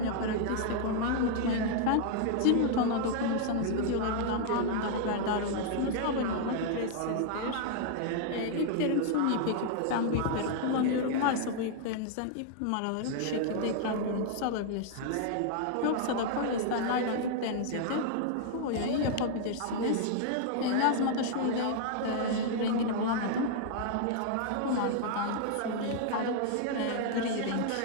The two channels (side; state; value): both; different; correlation -0.01